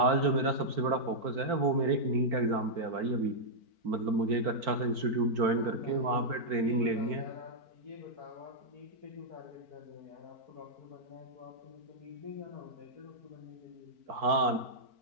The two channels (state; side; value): late; left; 4.5 ms